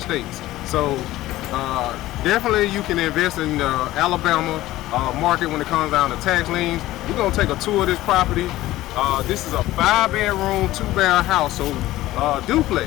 So definitely you can invest in the Alabama market when it comes down to tax liens. We're gonna take a tour of this property. This is a 5-bedroom, 2-bath house, so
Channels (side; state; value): right; quieter; 16.2 dB